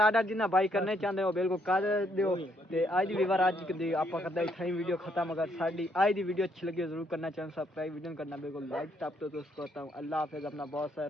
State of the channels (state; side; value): normal; both; correlation 0.71